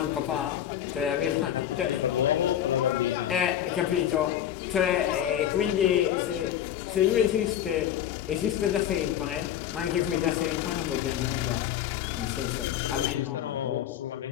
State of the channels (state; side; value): quieter; right; 10.8 dB